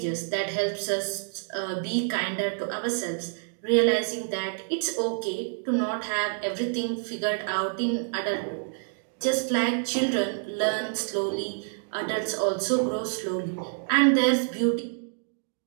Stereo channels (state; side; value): silent; left; digital silence